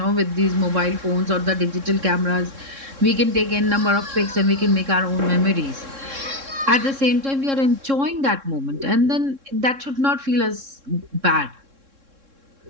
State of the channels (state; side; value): late; left; 3.7 ms